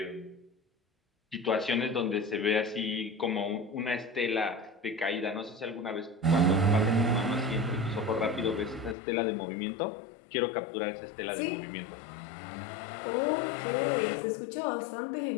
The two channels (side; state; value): right; drops out; at 9.0 s